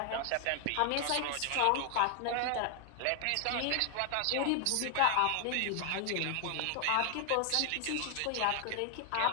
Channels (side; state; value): both; different; correlation 0.00